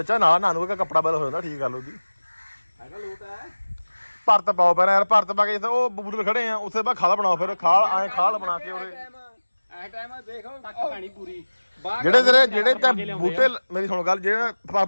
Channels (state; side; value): inverted; both; correlation -1.00